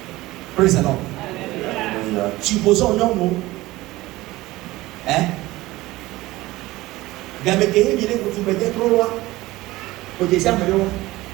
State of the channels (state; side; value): quieter; left; 18.6 dB